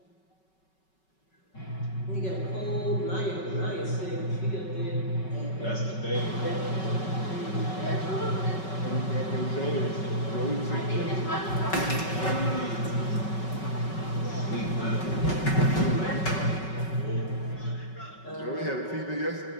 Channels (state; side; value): late; right; 5.3 ms